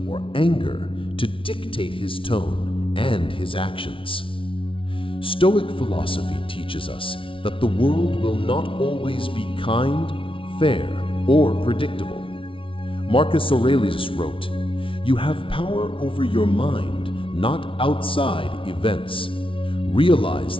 or anger to dictate his tone and his actions. Stoic philosophy teaches us that the world will not always be kind, fair, or predictable. Marcus Aurelius wrote, "You have power over your mind, not outside events. Realize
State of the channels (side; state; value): right; late; 0.25 ms